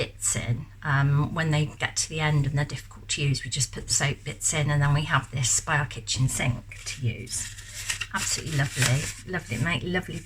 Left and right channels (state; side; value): identical; both; correlation 1.00